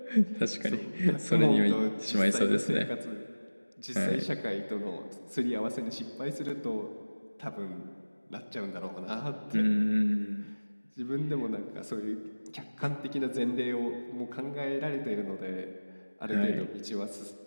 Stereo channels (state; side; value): inverted; both; correlation -1.00